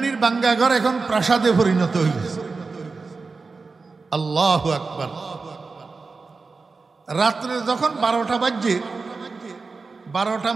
বাঙ্গাঘর এখন প্রাসাদে পরিণত হয়েছে। আল্লাহু আকবার। রাত্রে যখন 12টা বাজছে, 12টা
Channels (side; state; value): left; quieter; 4.2 dB